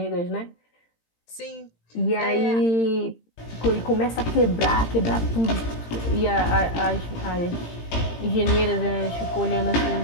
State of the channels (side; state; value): right; late; 18 ms